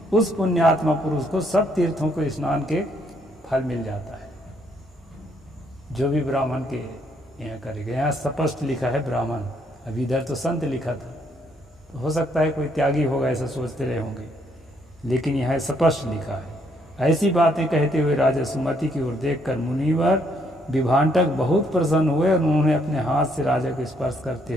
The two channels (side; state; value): both; normal; correlation 0.71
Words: उस पुण्यात्मा पुरुष को सब तीर्थों को स्नान के फल मिल जाता है, जो भी ब्राह्मण के यहाँ करेगा। यहाँ स्पष्ट लिखा है ब्राह्मण, अभी इधर तो संत लिखा था, तो हो सकता है कोई त्यागी होगा ऐसा सोचते रहे होंगे, लेकिन यहाँ स्पष्ट लिखा है। ऐसी बातें कहते हुए राजा सुमति की ओर देखकर मुनिवर विभांटक बहुत प्रसन्न हुए और उन्होंने अपने हाथ से राजा को स्पर्श करते